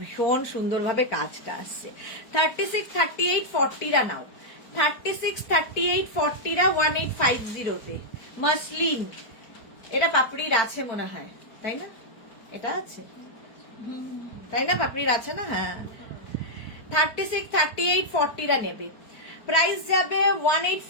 ভীষণ সুন্দরভাবে কাজটা আসছে। 36, 38, 40 রা নাও, 36, 38, 40 রা 1850 তে মাসলিন। এটা পাপড়ির আছে মনে হয়, তাই না? এটা আছে তাই না, পাপড়ির আছে না? হ্যাঁ 36, 38, 40 রা নেবে, প্রাইস যাবে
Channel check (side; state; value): right; late; 4.5 ms